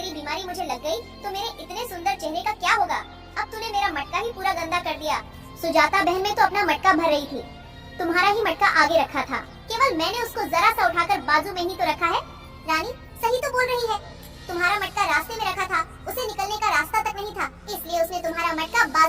बीमारी मुझे लग गई तो मेरे इतने सुंदर चेहरे का क्या होगा? अब तूने मेरा मटका ही पूरा गंदा कर दिया। सुजाता बहन में तो अपना मटका भर रही थी, तुम्हारा ही मटका आगे रखा था। केवल मैंने उसको जरा सा उठाकर बाजू में ही तो रखा है। रानी सही तो बोल रही है, तुम्हारा मटका रास्ते में रखा था, उसे निकलने का रास्ता तक नहीं था, इसलिए उसने तुम्हारा मटका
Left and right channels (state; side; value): identical; both; correlation 1.00